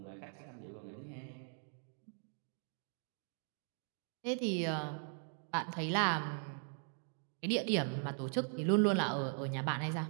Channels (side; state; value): left; silent; 51 dB below the other